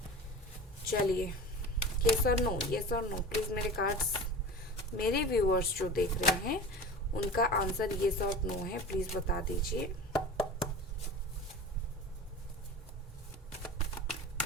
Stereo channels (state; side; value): normal; both; correlation 0.34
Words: चलिए, यस और नो, यस और नो। प्लीज मेरे कार्ड्स, मेरे व्यूअर्स जो देख रहे हैं उनका आंसर यस और नो है, प्लीज बता दीजिए।